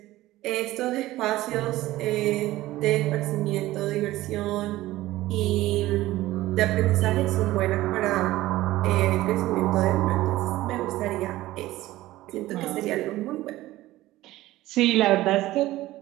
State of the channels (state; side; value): quieter; left; 16.6 dB